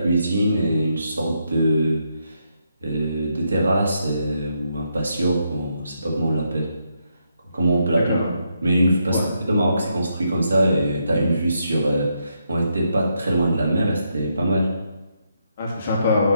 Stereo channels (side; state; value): both; inverted; correlation -0.79